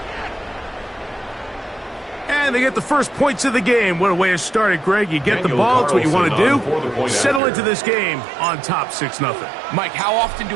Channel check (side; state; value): left; drops out; at 7.4 s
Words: And they get the first points of the game. What a way to start it, Greg. You get the ball. It's what you want to do. Settle into this game on top 6-0. Mike, how often